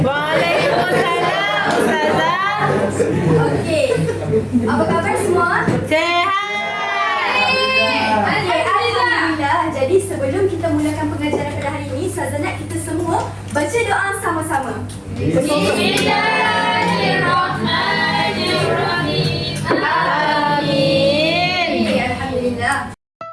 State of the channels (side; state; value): both; identical; correlation 1.00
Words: Waalaikumsalam Ustazah. Okey. Apa khabar semua? Sehat. Okey, alhamdulillah. Jadi sebelum kita mulakan pengajaran pada hari ini, Ustazah nak kita semua baca doa sama-sama. Bismillahirrahmanirrahim. Amin. Okey, alhamdulillah.